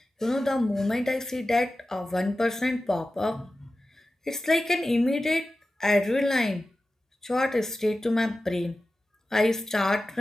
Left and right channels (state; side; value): normal; both; correlation 0.95